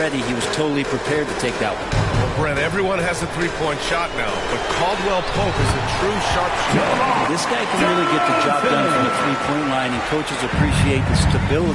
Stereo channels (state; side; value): identical; both; correlation 1.00